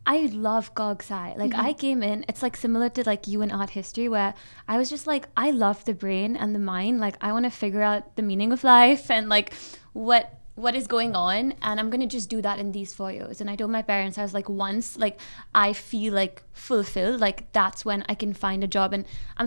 I love Gog Sci. Like, I came in, it's like similar to like you in art history, where I was just like, I love the brain and the mind. Like, I want to figure out the meaning of life and like what is going on, and I'm gonna just do that in these 4 years. And I told my parents, I was like, once like I feel like fulfilled, like that's when I can find a job. And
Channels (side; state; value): both; inverted; correlation -1.00